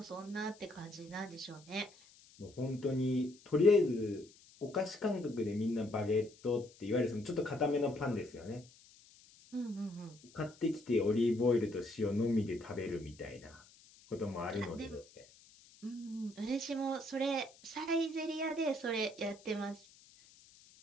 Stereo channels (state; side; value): noise; left; hiss, 25 dB below the sound